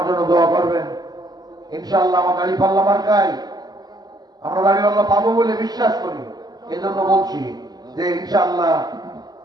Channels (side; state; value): left; late; 0.20 ms